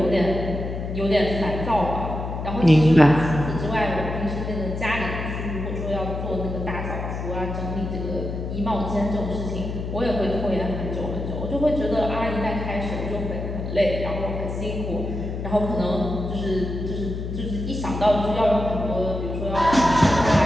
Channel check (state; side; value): noise; left; hum, 5 dB below the sound